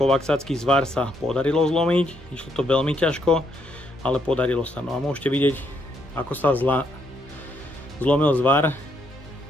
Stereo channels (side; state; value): both; normal; correlation 0.74